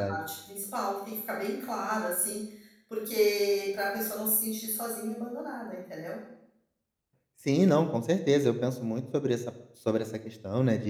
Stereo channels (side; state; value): both; identical; correlation 1.00